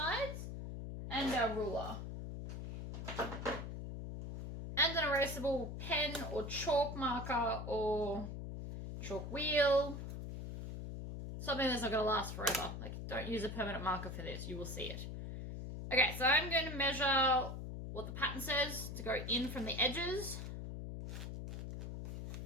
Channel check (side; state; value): left; noise; hum, 7 dB below the sound